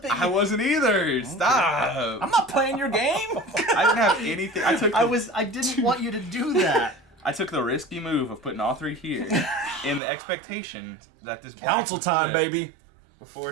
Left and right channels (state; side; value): drops out; left; at 10.0 s